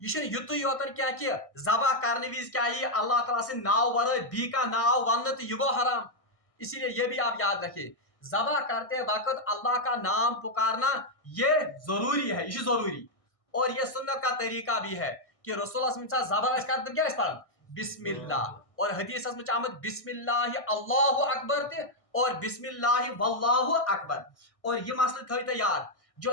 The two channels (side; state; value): right; late; 1.6 ms